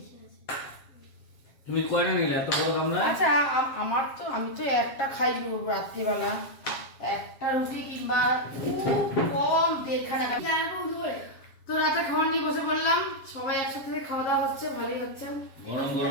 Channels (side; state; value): right; late; 7.5 ms